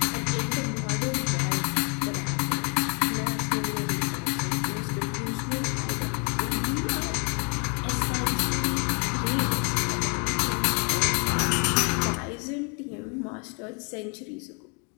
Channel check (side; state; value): right; quieter; 36.3 dB